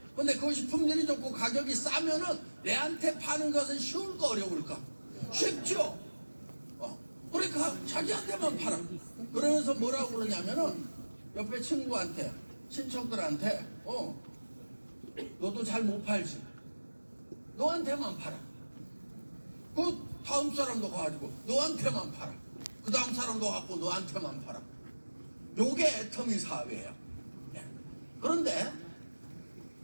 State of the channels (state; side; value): inverted; both; correlation -1.00